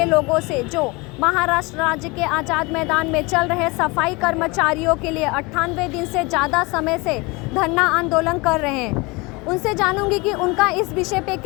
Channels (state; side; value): quieter; right; 25.8 dB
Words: लोगों से जो महाराष्ट्र राज्य के आज़ाद मैदान में चल रहे सफाई कर्मचारियों के लिए 98 दिन से ज़्यादा समय से धरना आंदोलन कर रहे हैं। उनसे जानूंगी कि उनका इस विषय पे